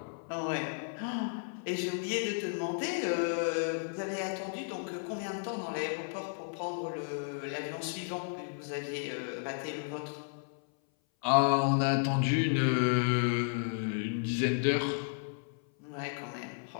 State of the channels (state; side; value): silent; right; 56 dB below the other